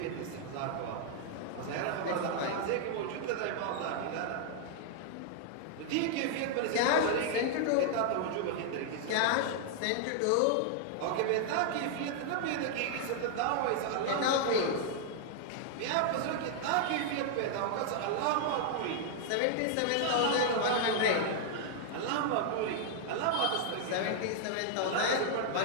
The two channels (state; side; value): different; both; correlation -0.01